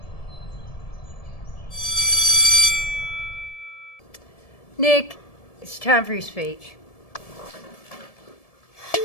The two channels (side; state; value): right; late; 1.7 ms